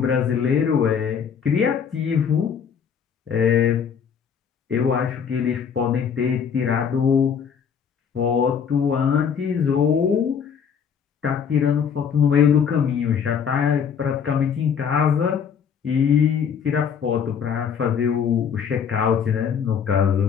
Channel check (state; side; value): quieter; right; 7.2 dB